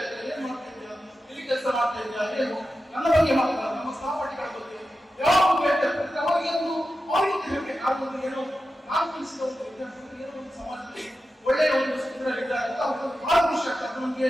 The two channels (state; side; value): normal; both; correlation 0.92